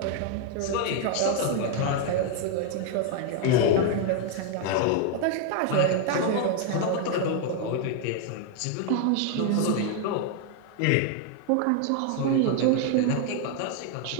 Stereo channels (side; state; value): both; different; correlation 0.00